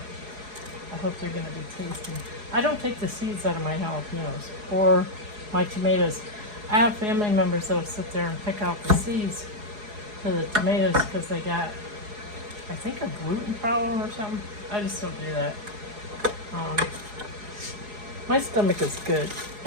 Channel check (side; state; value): left; late; 4.8 ms